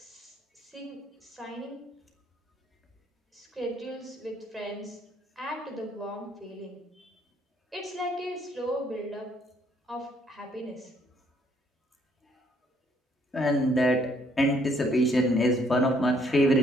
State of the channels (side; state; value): both; normal; correlation 0.67